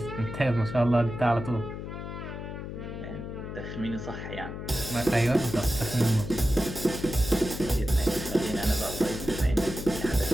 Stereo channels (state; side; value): noise; left; hum, 8 dB below the sound